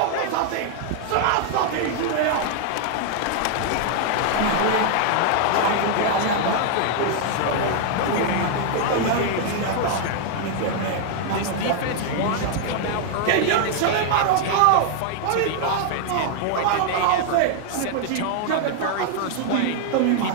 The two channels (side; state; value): both; different; correlation 0.00